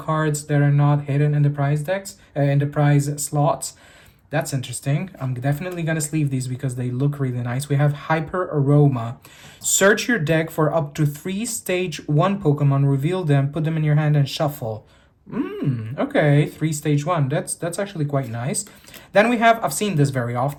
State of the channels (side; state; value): both; identical; correlation 1.00